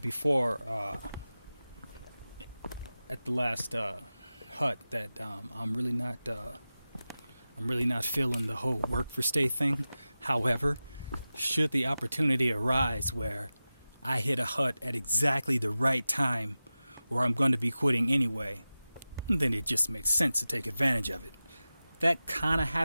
before, at the last hut, that I'm really not feeling the whole work for stay thing. However, should the opportunity arise where I hit a hut at exactly the right time, or I'm going to be quitting anyway, then it just makes sense to take advantage of it. That kind of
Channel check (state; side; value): inverted; both; correlation -0.95